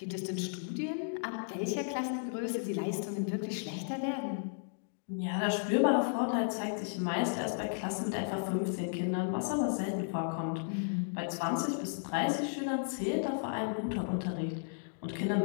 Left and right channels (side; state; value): right; silent; digital silence